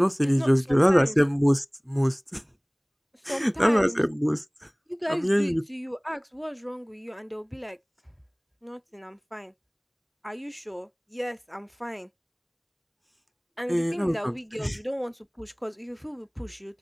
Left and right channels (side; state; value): both; identical; correlation 1.00